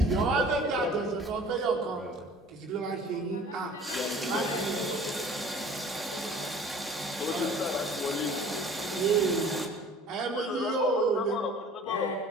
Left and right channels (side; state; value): both; normal; correlation 0.48